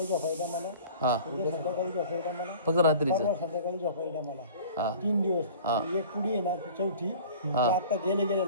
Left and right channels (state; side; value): inverted; both; correlation -0.44